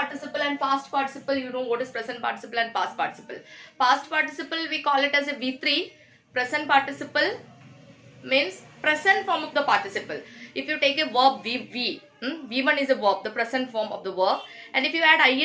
and past participle, you know what is present participle and past participle. Past participle we call it as a V3. Present participle means present form of the participle. If you take a verb V1 is a verb, the present form of the verb, and if you add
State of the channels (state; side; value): identical; both; correlation 1.00